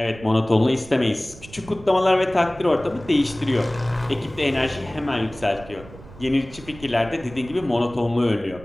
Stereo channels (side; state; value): right; noise; rumble, 18 dB below the sound